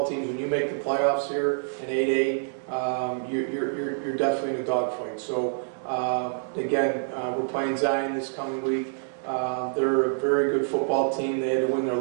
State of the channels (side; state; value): left; silent; digital silence